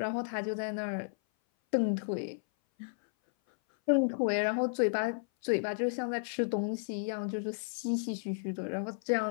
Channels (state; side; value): silent; right; 56 dB below the other